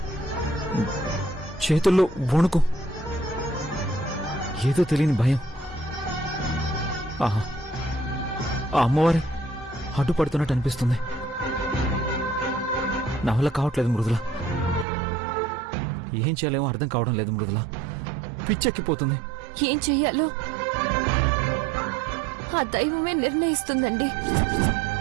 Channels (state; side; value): drops out; left; at 14.9 s